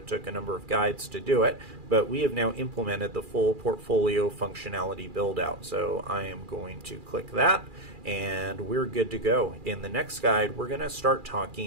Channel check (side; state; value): left; late; 2.4 ms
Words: took a number of guides to do it, but we have now implemented the full portfolio functionality build out. So I am going to click that, and we're good to go. In the next guide, we're going to start